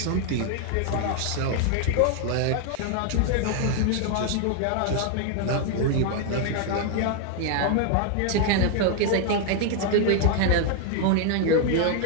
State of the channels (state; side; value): different; both; correlation 0.00